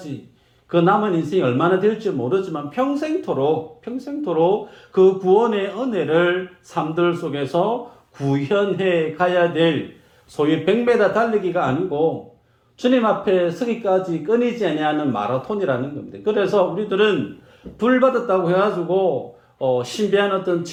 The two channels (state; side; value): identical; both; correlation 1.00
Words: 그 남은 인생이 얼마나 될지 모르지만 평생토록 그 구원의 은혜를 삶들 속에서 구현해 가야 될 소위 100m 달리기가 아니고 주님 앞에 서기까지 끊이지 아니하는 마라톤이라는 겁니다. 그래서 우리들은 불 받았다고 해가지고 신비한 어떤